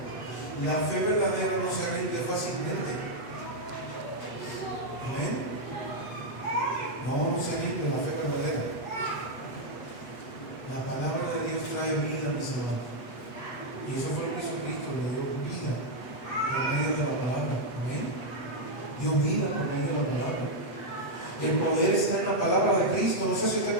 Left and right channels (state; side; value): late; right; 7.2 ms